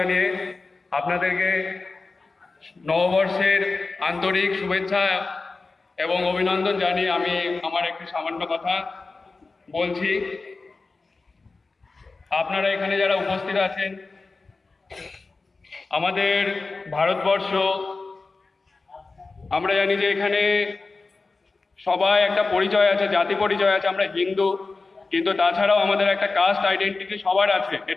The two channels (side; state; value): right; quieter; 3.8 dB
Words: আপনাদেরকে নববর্ষের আন্তরিক শুভেচ্ছা এবং অভিনন্দন জানিয়ে আমি আমার একটি সামান্য কথা বলছি। আপনারা এখানে যারা উপস্থিত আছেন, আমাদের ভারতবর্ষ, আমরা জানি যে এখানে সবাই একটা পরিচয় আছে, জাতি পরিচয় আছে, আমরা হিন্দু, কিন্তু তাছাড়াও আমাদের একটা কাস্ট আইডেন্টিটি সবার আছে।